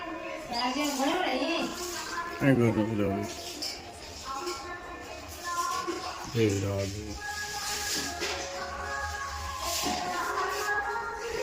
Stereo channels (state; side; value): identical; both; correlation 1.00